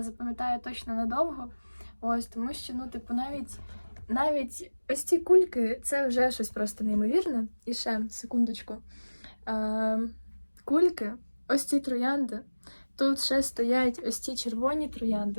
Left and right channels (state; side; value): inverted; both; correlation -1.00